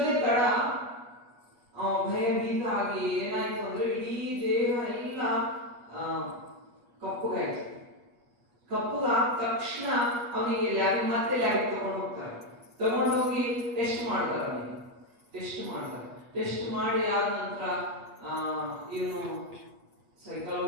ತಡ ಭಯಭೀತ ಆಗಿ ಏನಾಯ್ತು ಅಂದ್ರೆ ಇಡೀ ದೇಹ ಎಲ್ಲ ಕಪ್ಪುಗಾದ ತಕ್ಷಣ ಅವನಿಗೆ ಮತ್ತೆ ಲ್ಯಾಬಿಗೆ ತಗೊಂಡೋಗಿ ಟೆಸ್ಟ್ ಮಾಡ್ತಾರೆ. ಟೆಸ್ಟ್ ಮಾಡಿ ಆದ ನಂತರ ಇವನು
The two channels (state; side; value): late; left; 8.3 ms